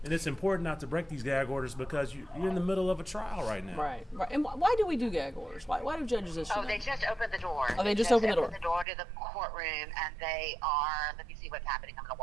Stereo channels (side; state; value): left; drops out; at 8.8 s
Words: And it's important not to break these gag orders because you're in the middle of a trial right now. Right. And why do we do gag orders? Why do judges issue them? They just opened the door. Oh, they just opened the door. Opened the door to the courtroom, and they are. Let me see what's happening. I'm going to